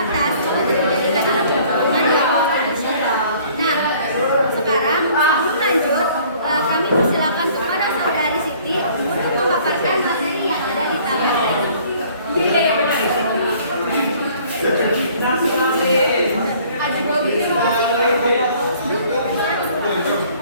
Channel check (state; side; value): inverted; both; correlation -0.56